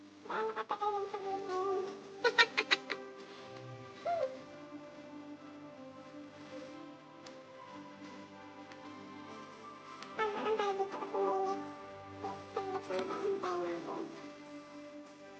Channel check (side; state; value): both; identical; correlation 1.00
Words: gaano katagal yung sabihin na yun? Antay dito kasi mainit. Saglit lang, antay na ako.